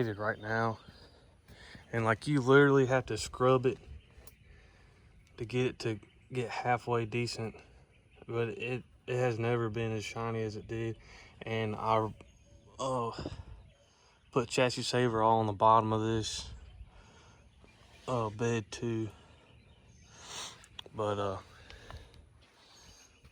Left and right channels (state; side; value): identical; both; correlation 1.00